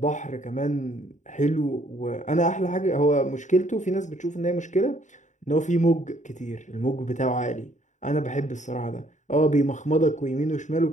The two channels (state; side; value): late; right; 0.35 ms